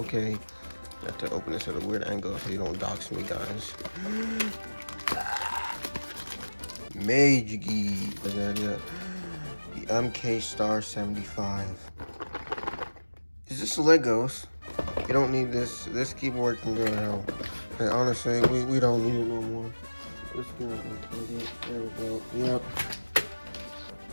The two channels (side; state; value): both; inverted; correlation -1.00